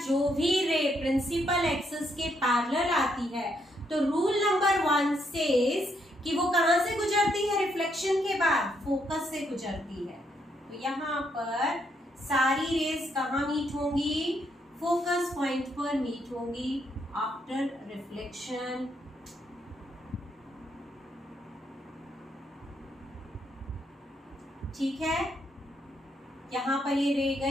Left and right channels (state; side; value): normal; both; correlation 0.75